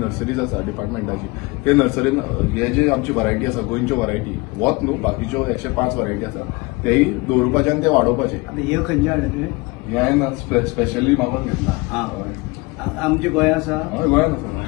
आसा डिपार्टमेंटाची ते नर्सरीन हे जे आमची वरायटी आसा गोंयच्यो वरायटी वत न्हू बाकीच्यो 105 वरायटी आसा तेय दवरपाचे आनी ते वाडोवपाचे. हे खंयचे हाडले हे हांवें स्पेशली मागून घेतला आमचे गोंय आसा हय गोंयान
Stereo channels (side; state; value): right; quieter; 24.6 dB